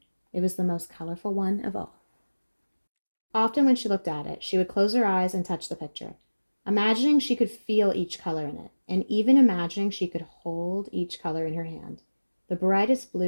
It was the most colorful one of all. Often when she looked at it, she would close her eyes and touch the picture, imagining she could feel each color in it, and even imagining she could hold each color in her hand. The brightest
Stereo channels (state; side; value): inverted; both; correlation -1.00